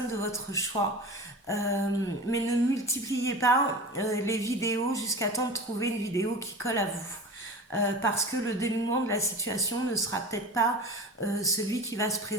de votre choix. Mais ne multipliez pas les vidéos jusqu'à temps de trouver une vidéo qui colle à vous. Parce que le dénouement de la situation ne sera peut-être pas celui qui va se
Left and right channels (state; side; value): normal; both; correlation 0.33